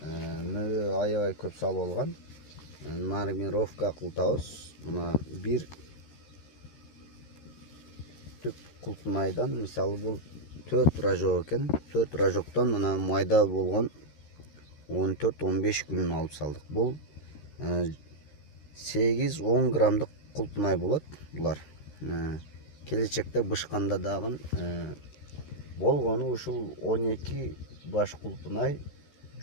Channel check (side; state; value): right; late; 13 ms